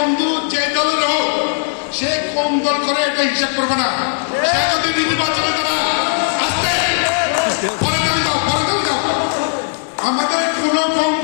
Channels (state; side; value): silent; right; digital silence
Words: যে দলের হোক, সে কোন দল করে এটা হিসাব করবে না। সে যদি নির্বাচনে তারা আসতে পরে দাও। আমাদের কোন